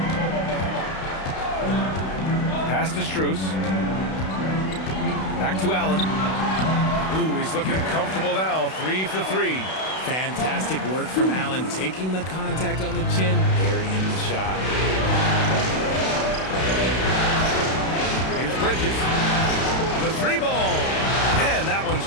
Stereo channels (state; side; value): late; right; 32 ms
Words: Pass to Strus. Back to Allen. Ooh, he's looking comfortable now. 3 for 3. Fantastic work from Allen, taking the contact on the chin, burying the shot. Here's Bridges. The 3 ball. And that one's